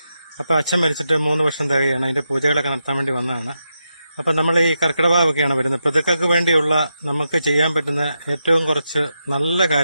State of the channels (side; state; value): both; inverted; correlation -0.86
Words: അപ്പോൾ അച്ഛൻ മരിച്ചിട്ട് 3 വർഷം തികയാണ്. അതിൻ്റെ പൂജകളൊക്കെ നടത്താൻ വേണ്ടി വന്നതാണ്. അപ്പം നമ്മൾ ഈ കർക്കിടകവാവൊക്കെയാണ് വരുന്നത്. പിതൃക്കൾക്ക് വേണ്ടിയുള്ള നമുക്ക് ചെയ്യാൻ പറ്റുന്ന ഏറ്റവും കുറച്ച് നല്ല